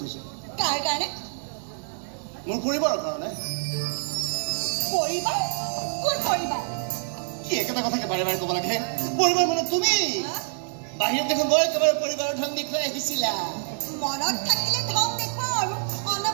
থৈছে কাৰ কাৰণে মোৰ পৰিবাৰৰ কাৰণে পৰিবাৰ কোন পৰিবাৰ কি একেটা কথাকে বাৰে বাৰে ক'ব লাগে পৰিবাৰ মানে তুমি বাহিৰত দেখোন গৈ একেবাৰে পৰিবাৰৰ ধন দেখুৱাই আহিছিলা মনত থাকিলে ধন দেখুৱাও আৰু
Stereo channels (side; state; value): left; silent; digital silence